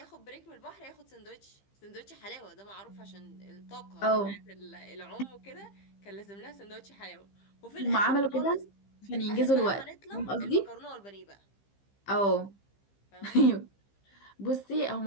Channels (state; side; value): late; right; 15 ms